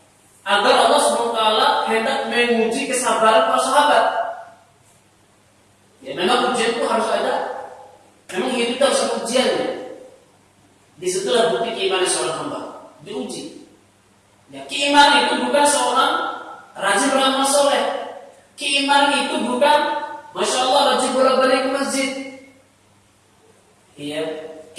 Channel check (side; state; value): both; identical; correlation 1.00